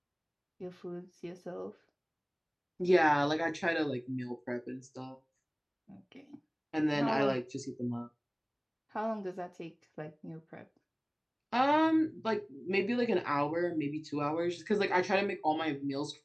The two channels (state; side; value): identical; both; correlation 1.00